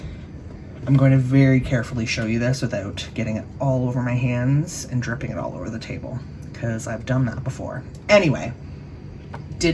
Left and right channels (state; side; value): identical; both; correlation 1.00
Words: I'm going to very carefully show you this without getting it all over my hands and dripping it all over the table, because I've done that before. Anyway,